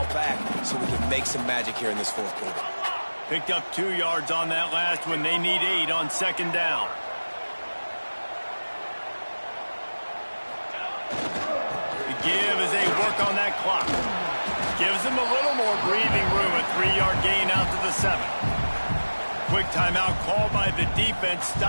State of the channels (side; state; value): both; inverted; correlation -1.00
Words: back so we can make some magic here in this fourth quarter. Picked up 2 yards on that last one. They need 8 on second down. Give as they work on that clock. Gives them a little more breathing room. A 3-yard gain out to the 7. Quick timeout called by the defense,